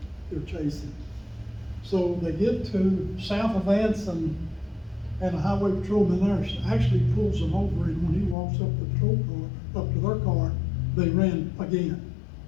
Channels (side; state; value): right; drops out; at 8.3 s